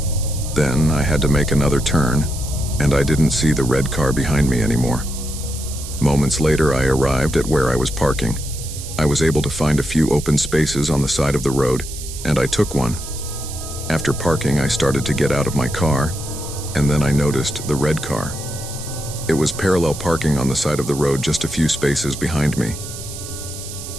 Then I had to make another turn, and I didn't see the red car behind me anymore. Moments later, I arrived at where I was parking. I was able to find a few open spaces on the side of the road, and I took one. After parking, I started to get out of my car, and then I noticed the red car. It was parallel parking on the side of the road just a few spaces behind me.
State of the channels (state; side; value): noise; right; hiss, 11 dB below the sound